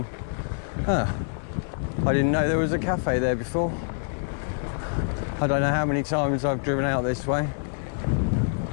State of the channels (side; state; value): right; silent; 55 dB below the other